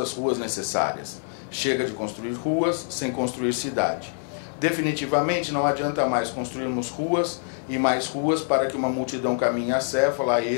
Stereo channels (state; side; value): silent; right; digital silence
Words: ruas necessárias. Chega de construir ruas sem construir cidade. Definitivamente não adianta mais construirmos ruas e mais ruas para que uma multidão caminhe acéfala, a